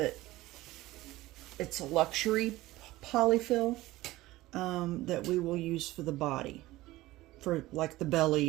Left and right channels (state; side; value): quieter; left; 17.8 dB